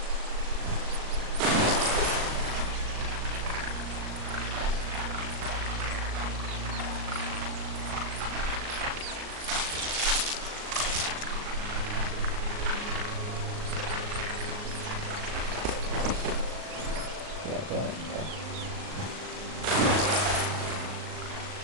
Yeah, go ahead. Go.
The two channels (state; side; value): late; left; 38 ms